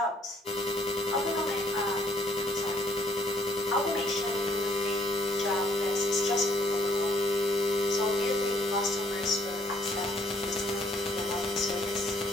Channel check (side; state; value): both; normal; correlation 0.66